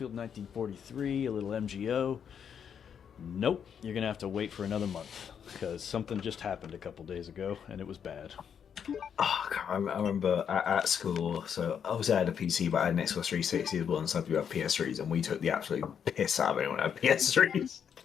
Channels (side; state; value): right; quieter; 7.8 dB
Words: 1943, a little MGO. Nope, you're going to have to wait for another month, because something just happened a couple days ago, and it was bad. Oh, I remember at school, so obviously I had a PC, but I had an Xbox 360 as well, and some people had PS3s, and we took the absolute piss out of anyone who had PS3s.